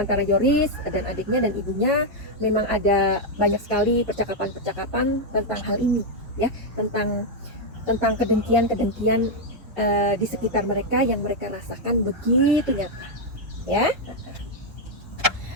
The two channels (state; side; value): normal; both; correlation 0.00